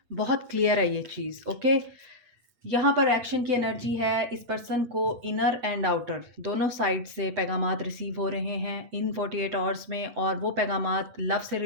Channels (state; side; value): late; left; 8.4 ms